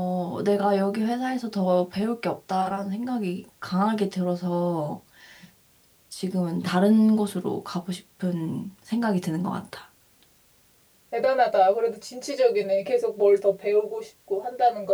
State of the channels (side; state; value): both; identical; correlation 1.00